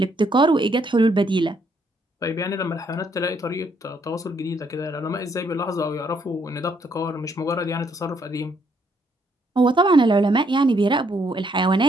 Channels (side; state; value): both; normal; correlation 0.71